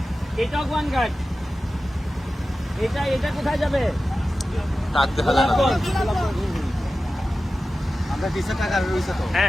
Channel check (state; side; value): normal; both; correlation 0.94